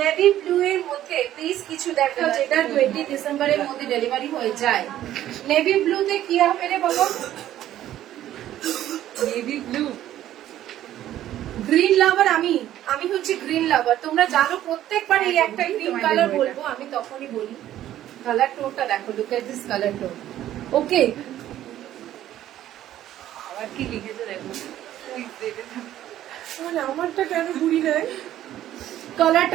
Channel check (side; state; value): left; quieter; 12.6 dB